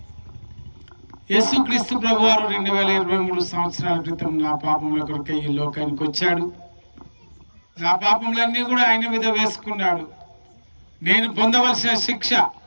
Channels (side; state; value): both; inverted; correlation -1.00